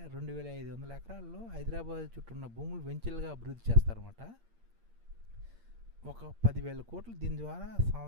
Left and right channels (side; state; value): left; late; 8.6 ms